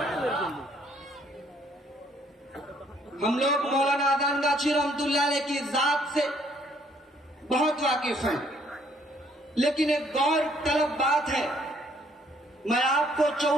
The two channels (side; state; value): both; normal; correlation 0.65